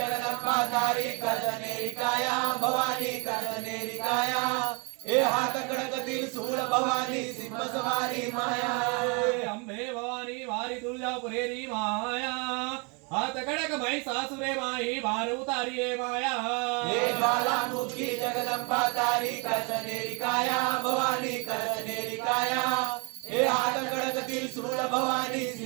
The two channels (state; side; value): quieter; left; 32.5 dB